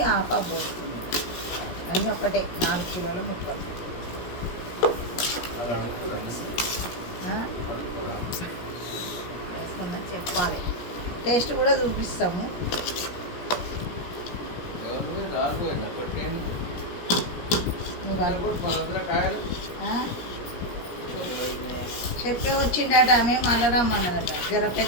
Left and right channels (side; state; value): right; late; 17 ms